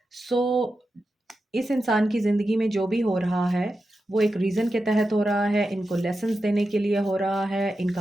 So इस इंसान की ज़िंदगी में जो भी हो रहा है, वो एक रीज़न के तहत हो रहा है, इनको लेसन्स देने के लिए हो रहा है,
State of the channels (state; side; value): normal; both; correlation 0.90